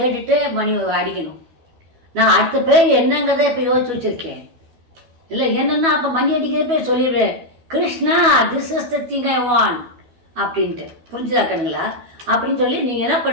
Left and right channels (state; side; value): late; left; 12 ms